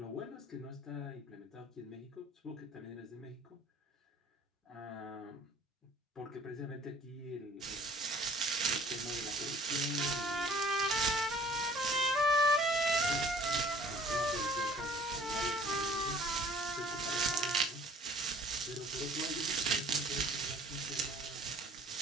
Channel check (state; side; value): normal; both; correlation 0.51